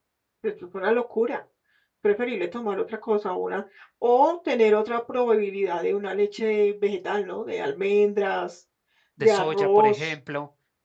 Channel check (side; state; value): both; identical; correlation 1.00